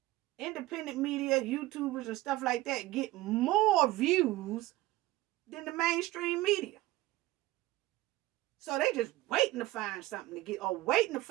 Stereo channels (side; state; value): left; quieter; 17.6 dB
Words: independent media, YouTubers and stuff like that get more views than the mainstream media. So they just waiting to find something to get, or waiting to